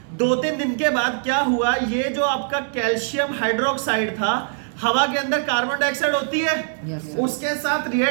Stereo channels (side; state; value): left; silent; digital silence